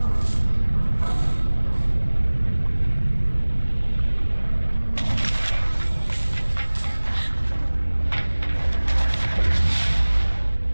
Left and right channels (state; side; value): inverted; both; correlation -1.00